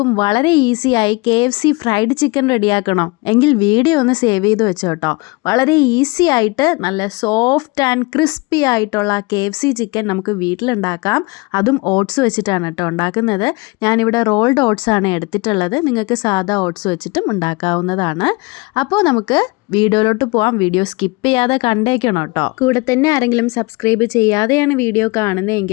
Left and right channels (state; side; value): quieter; right; 25.5 dB